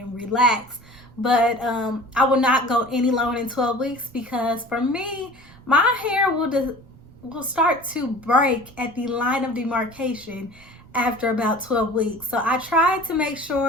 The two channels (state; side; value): noise; right; rumble, 24 dB below the sound